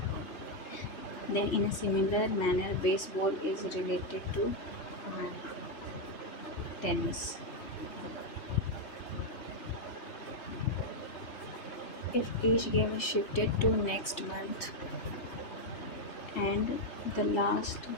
then in a similar manner baseball is related to tennis if each game is shifted to next month and the last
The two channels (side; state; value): right; late; 3.3 ms